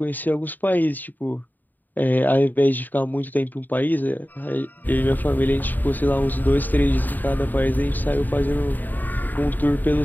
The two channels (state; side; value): late; right; 0.088 ms